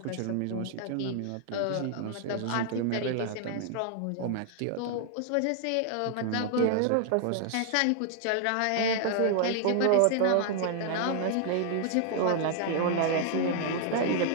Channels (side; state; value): both; different; correlation 0.00